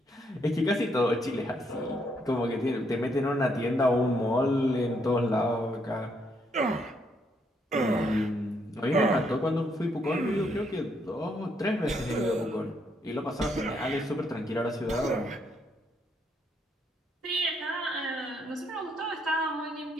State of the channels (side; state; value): both; normal; correlation 0.74